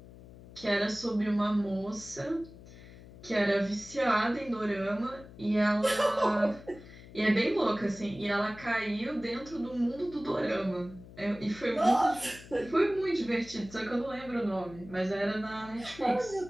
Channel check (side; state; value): left; noise; hum, 18 dB below the sound